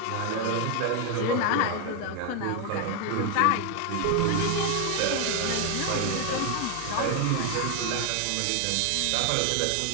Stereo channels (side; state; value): both; different; correlation 0.01